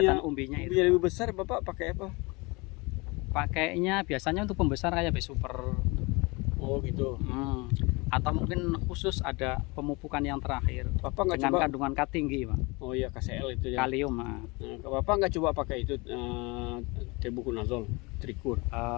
umbinya umbinya itu. lebih besar Bapak pakai apa? Pakainya biasanya untuk pembesar kayak B-Super. Oh gitu. Atau mungkin khusus ada pemupukan yang terakhir Bapak nggak dengan coba? kandungan K tinggi Pak. Oh iya KCL itu ya. Kalium. Nah, Bapak nggak coba pakai itu tebuconazole, trikur.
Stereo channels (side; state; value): right; quieter; 26.4 dB